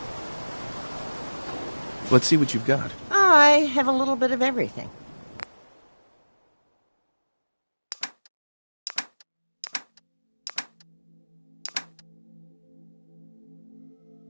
Let's see what you've got. I have a little bit of everything.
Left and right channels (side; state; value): both; inverted; correlation -1.00